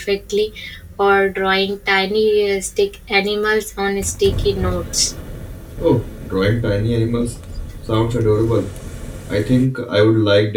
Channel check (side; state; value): both; identical; correlation 1.00